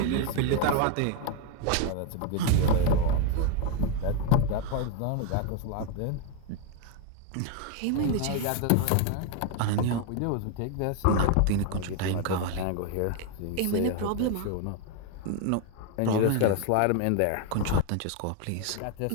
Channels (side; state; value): both; different; correlation 0.01